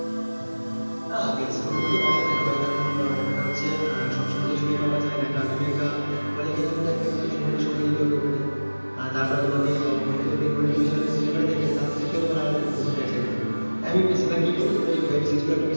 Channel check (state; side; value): inverted; both; correlation -1.00